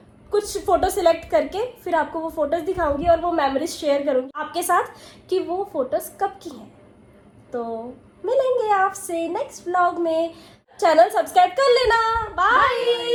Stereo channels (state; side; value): identical; both; correlation 1.00